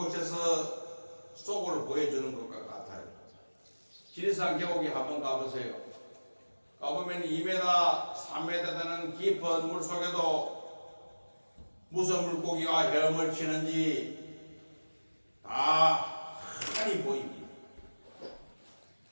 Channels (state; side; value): inverted; both; correlation -1.00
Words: 속을 보여주는 것과 같아요. 지리산 계곡에 한번 가보세요. 가보면 2m, 3m 되는 깊은 물 속에도 무슨 물고기가 헤엄을 치는지 다 환히 보입니다.